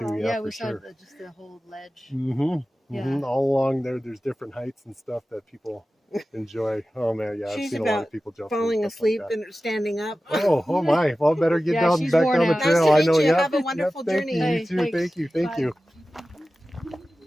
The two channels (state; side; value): normal; both; correlation 0.95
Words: Wow. Yeah, we for saw sure. just the whole ledge. Mm-hmm. Yeah. Mm-hmm. All along there, there's different heights and stuff that people enjoy. Oh man, yeah, I've She's seen a lot about of people jumping falling and stuff asleep like and standing up. that. Oh my! Well, better get Yeah, down she's back worn down the out. Nice to trail. I meet know. you. Yep, Have a wonderful yep, journey. Thank you. Hey, You too. thanks. Thank you. Thank Bye. you.